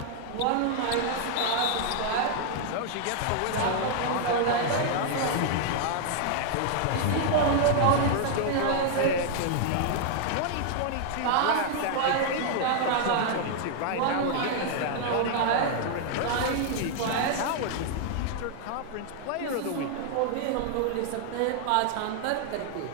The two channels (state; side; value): different; both; correlation 0.00